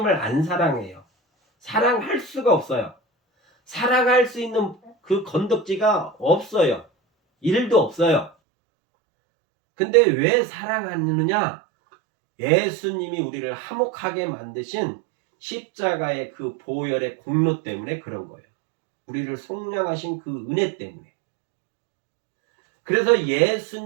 안 사랑해요. 사랑할 수가 없어요. 사랑할 수 있는 그 건덕지가 없어요. 일도 없어요. 근데 왜 사랑하느냐? 예수님이 우리를 화목하게 만드신 십자가의 그 보혈의 공로 때문에 그런 거예요. 우리를 속량하신 그 은혜 때문에. 그래서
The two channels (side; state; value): left; drops out; at 8.3 s